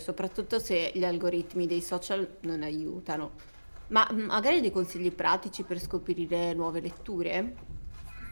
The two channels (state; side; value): inverted; both; correlation -1.00